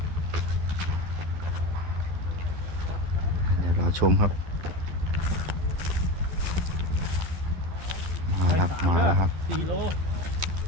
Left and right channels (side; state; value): left; late; 12 ms